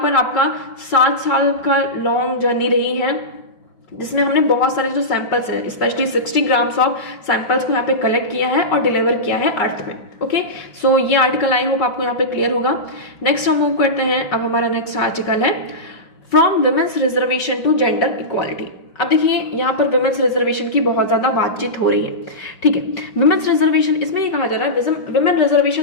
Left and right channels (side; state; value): right; late; 5.3 ms